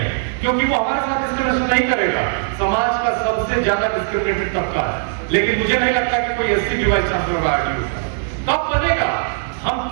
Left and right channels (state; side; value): silent; left; digital silence